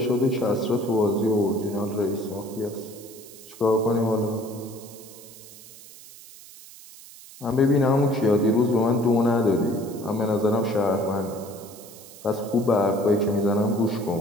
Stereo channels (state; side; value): noise; right; hiss, 19 dB below the sound